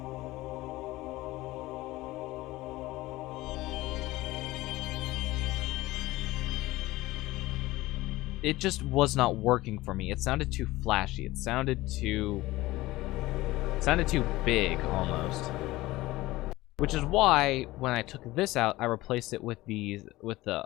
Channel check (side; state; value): right; quieter; 18.4 dB